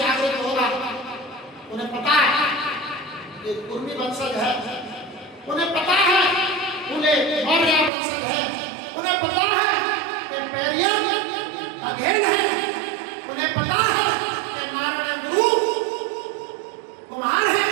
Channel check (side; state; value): left; drops out; at 7.9 s